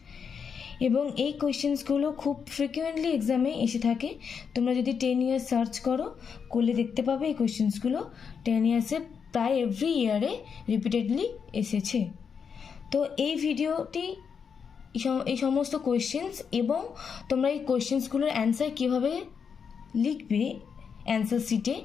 এবং এই কোয়েশ্চেন্সগুলো খুব ফ্রিকুয়েন্টলি এক্সামে এসে থাকে। তোমরা যদি 10 ইয়ার্স সার্চ করলে দেখতে পাবে এই কোয়েশ্চেন্সগুলো 10 ইয়ার্সে প্রায় এভরি ইয়ারে রিপিটেডলি এসেছে। তো এই ভিডিওটি এই সমস্ত কোয়েশ্চেন্স এবং তোমরা এই কোয়েশ্চেন্সগুলোর অ্যান্সার কীভাবে লিখবে অ্যান্সার শিটে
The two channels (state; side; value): quieter; right; 6.5 dB